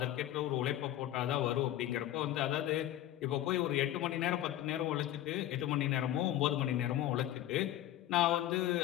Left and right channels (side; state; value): right; quieter; 13.1 dB